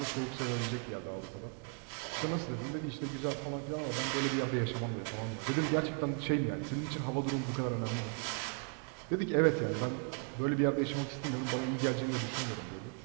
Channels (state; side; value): quieter; left; 39.7 dB